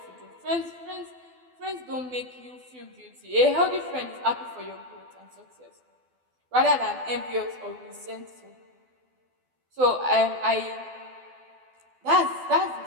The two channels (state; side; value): late; left; 12 ms